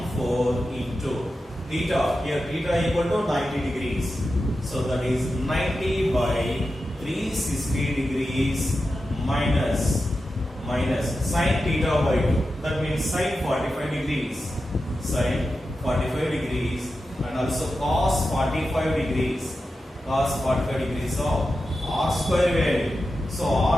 into theta. Here theta equal to 90 degrees. So that is 90 by 360 degrees minus sin theta by 2. That means sin 45 degrees. Sin 45 degrees and also cos 45 degrees. Cos 45 degrees of r square value. So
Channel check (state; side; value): normal; both; correlation 0.91